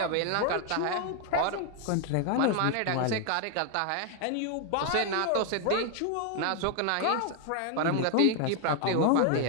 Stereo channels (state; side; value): different; both; correlation 0.00